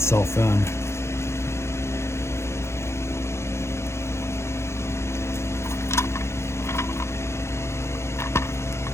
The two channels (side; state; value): right; late; 0.13 ms